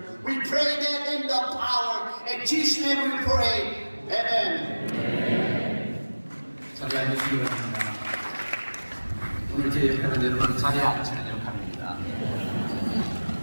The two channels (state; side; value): inverted; both; correlation -1.00